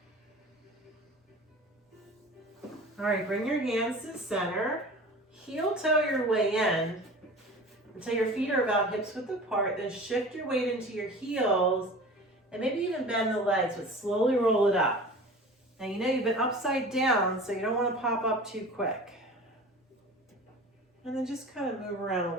All right, bring your hands to the center. Heel toe your way in until your feet are about hips width apart. Then shift your weight into your heels and maybe even bend the legs, but slowly roll it up. Now you know you've been upside down, so you don't want to pop up too quick. And then just kind of move around a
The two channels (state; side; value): normal; both; correlation 0.39